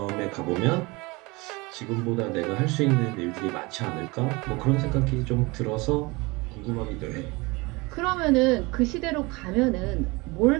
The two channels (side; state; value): left; quieter; 24.8 dB